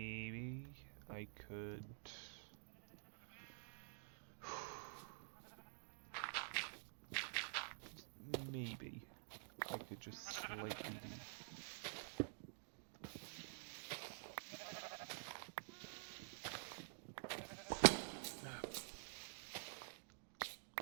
I could. Maybe I could just slightly do.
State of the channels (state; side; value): silent; left; digital silence